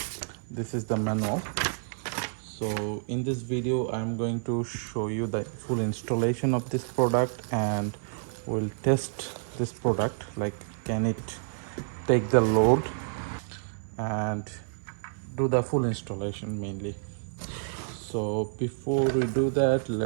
This is the manual. So in this video I am going to show you the full installation of this product, and we'll test this product, like can it take the load, and do the full installation mainly. So before we do that,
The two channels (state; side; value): silent; left; 59 dB below the other